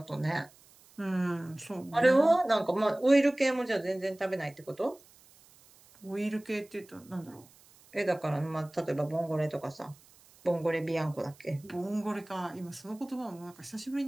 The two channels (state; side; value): noise; right; hiss, 27 dB below the sound